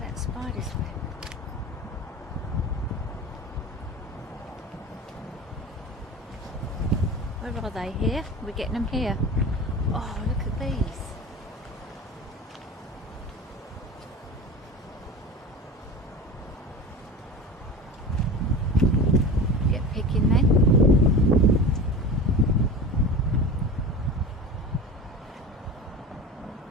that spider's web. Where are they? Here? We're getting them here. Oh, look at these. Get picking then.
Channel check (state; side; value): normal; both; correlation 0.32